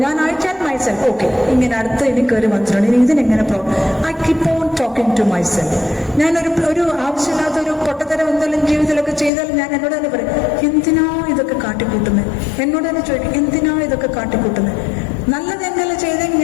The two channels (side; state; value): right; drops out; at 9.3 s